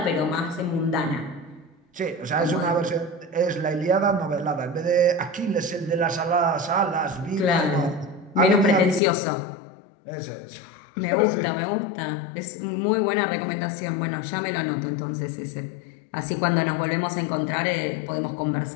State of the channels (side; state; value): right; drops out; at 9.0 s